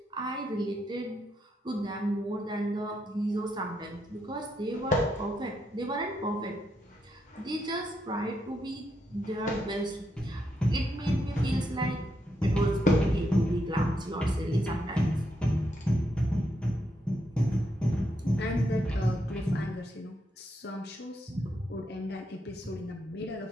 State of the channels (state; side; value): normal; both; correlation 0.80